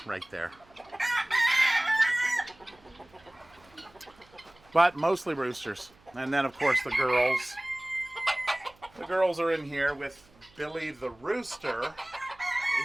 right there. But mostly roosters. And then, of course, the girls. The girls are in here with Billy the rooster.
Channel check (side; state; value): right; noise; hum, 29 dB below the sound